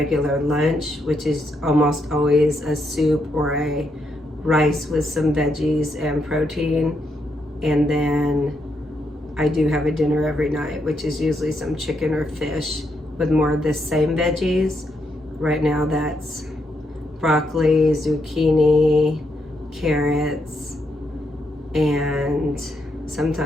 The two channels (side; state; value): both; normal; correlation 0.79